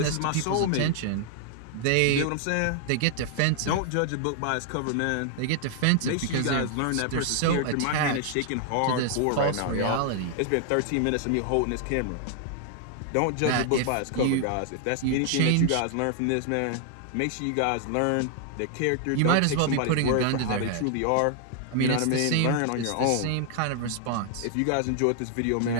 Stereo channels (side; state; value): both; different; correlation 0.00